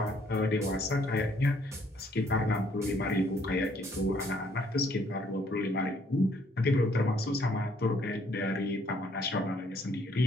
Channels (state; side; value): normal; both; correlation 0.65